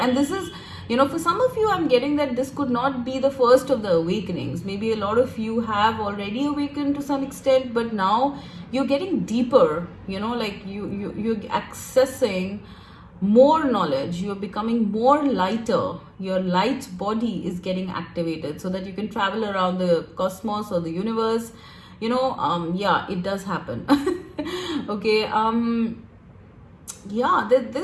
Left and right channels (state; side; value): identical; both; correlation 1.00